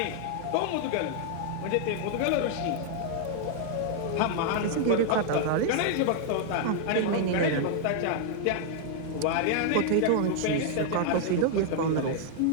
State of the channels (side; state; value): both; different; correlation 0.00